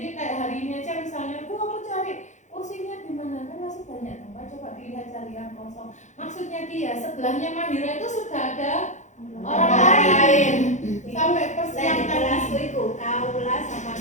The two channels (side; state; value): right; late; 0.35 ms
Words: kayak hari ini aja misalnya, Bu aku cari kursinya di mana, kan masih banyak tempat, coba dilihat cari yang kosong. Maksudnya dia sebelahnya Mahira itu sudah ada orang lain. Sampai persiapan kelasku itu Kaula sama